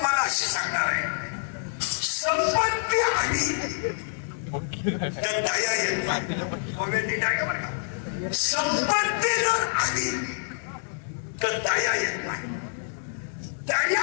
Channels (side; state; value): right; silent; digital silence